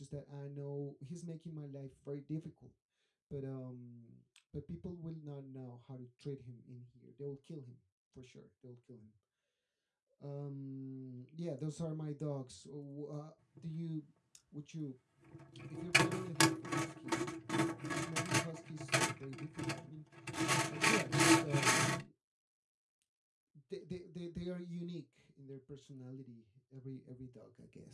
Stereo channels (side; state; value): both; identical; correlation 1.00